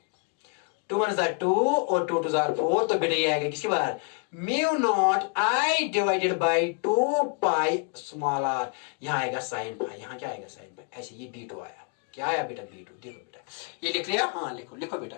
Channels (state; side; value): quieter; right; 39.0 dB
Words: 2 1 is 2 और 2 2 is 4। तो बेटा ये आएगा किसके बराबर? Mu naught I divided by 2 pi small R. यहां आएगा sin फाई, यहां क्या आएगा? sin phi. ऐसे ये B2 आया। क्या आया बेटा? B2। देखो बेटा, ये लिख लिया? हाँ लिखो, लिखो बेटा,